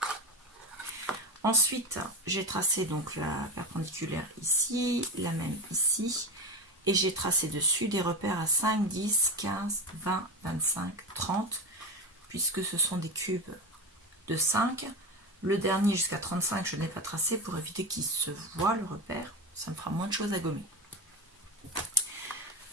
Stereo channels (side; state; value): both; normal; correlation 0.20